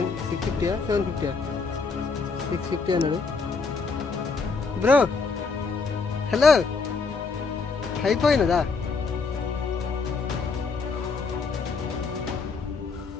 750 650 అన్నాడు. బ్రో హలో అయిపోయినదా?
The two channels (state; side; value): quieter; right; 4.6 dB